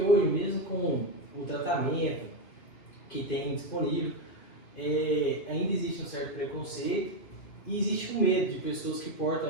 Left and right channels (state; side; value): late; right; 2.7 ms